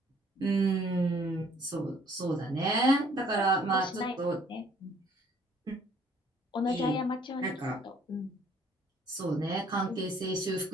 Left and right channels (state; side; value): normal; both; correlation 0.60